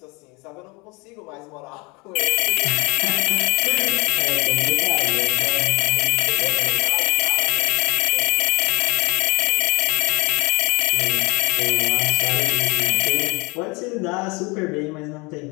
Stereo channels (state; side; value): quieter; right; 27.5 dB